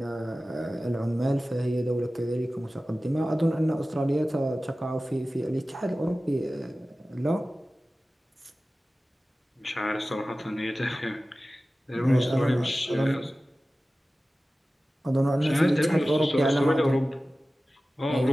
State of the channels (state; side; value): normal; both; correlation 0.96